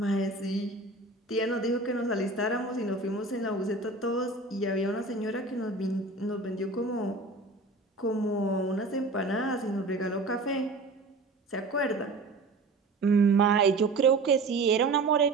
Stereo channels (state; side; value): quieter; left; 3.3 dB